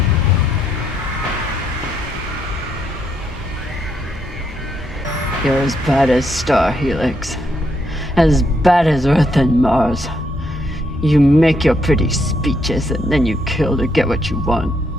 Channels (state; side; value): normal; both; correlation 0.76